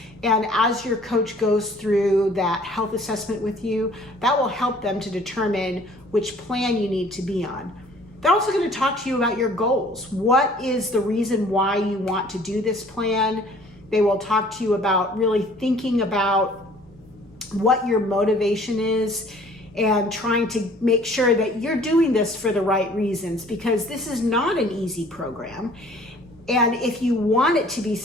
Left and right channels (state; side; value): normal; both; correlation 0.54